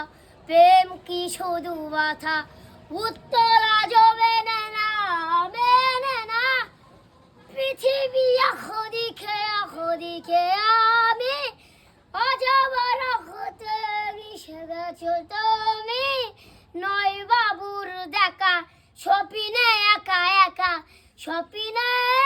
প্রেম কি শুধু ব্যথা, উত্তর আজও মেনে না, মেনে না। পৃথিবী দিকে আমি, আজ আমার হতে মিশে গেছো তুমি। নয় বাবুর দেখা, স্বপ্নে একা একা, স্বপ্নে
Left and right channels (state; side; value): identical; both; correlation 1.00